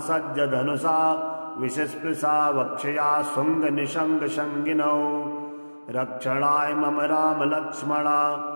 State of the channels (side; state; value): both; inverted; correlation -1.00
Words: विषस्पृशा वक्षया शुङ्गनिशङ्गशङ्गिनौ रक्षणाय मम रामलक्ष्मणा